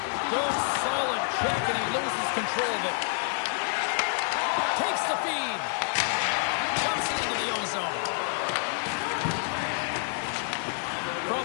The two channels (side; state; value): right; silent; 56 dB below the other